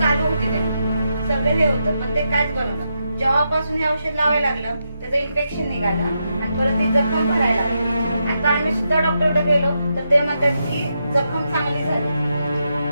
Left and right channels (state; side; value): inverted; both; correlation -0.84